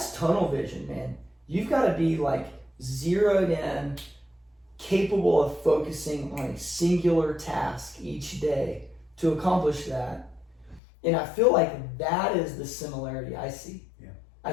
tunnel vision, man. You've got to be like zeroed in, capable of focusing on a singular task each day to accomplish that. And I feel like that is the similarity I see. Yeah. I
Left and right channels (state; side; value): drops out; right; at 10.8 s